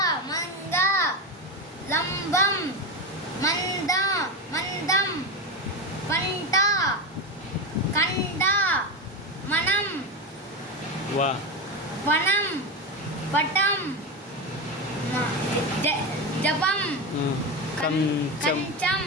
మంగ లంబం మందం పంట కండ మనం వనం పటం జపం కంచం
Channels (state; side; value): normal; both; correlation 0.17